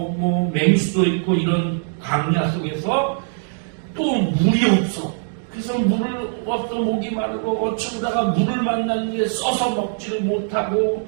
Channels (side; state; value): left; silent; digital silence